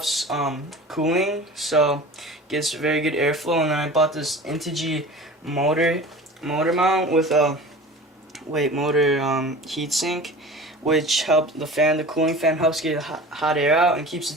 cooling, so gets very good airflow. And then I bought this Integy motor mount with a motor heatsink, which helps the cooling fan helps get hot air out and keeps the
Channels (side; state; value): both; normal; correlation 0.38